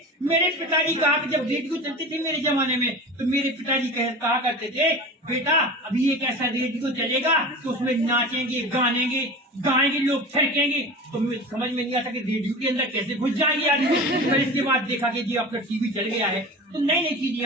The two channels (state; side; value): normal; both; correlation 0.33